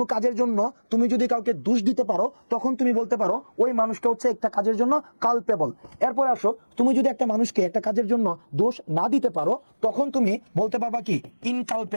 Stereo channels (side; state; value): both; inverted; correlation -1.00